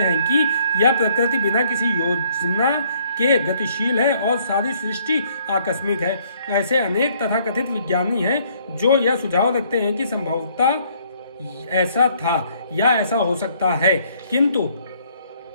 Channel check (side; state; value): both; inverted; correlation -0.64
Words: कि यह प्रकृति बिना किसी योजना के गतिशील है और सारी सृष्टि आकस्मिक है। ऐसे अनेक तथाकथित विज्ञानी हैं जो यह सुझाव रखते हैं कि संभवतः ऐसा था या ऐसा हो सकता है, किंतु